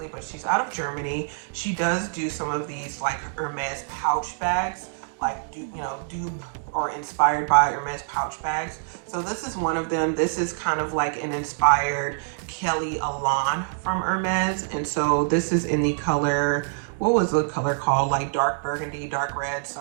but she's out of Germany. She does do some of these like Hermes pouch bags, like dupe or inspired by Hermes pouch bags. So this is one of them. This is kind of like an inspired Kelly Elan from Hermes. And so this is in the color, what was the color called? Like dark burgundy, dark red,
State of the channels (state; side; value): silent; left; digital silence